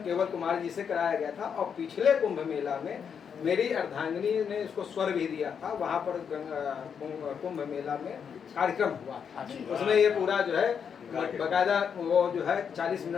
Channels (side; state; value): right; quieter; 7.1 dB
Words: केवल कुमार जी से कराया गया था, और पिछले कुंभ मेला में मेरी अर्धांगिनी ने इसको स्वर भी दिया था, वहाँ पर कुंभ मेला में कार्यक्रम हुआ था। उसमें ये पूरा जो है बकायदा वो जो है 40